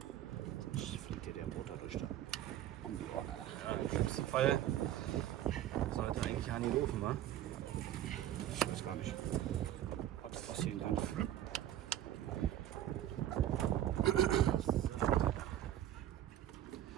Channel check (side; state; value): left; quieter; 12.2 dB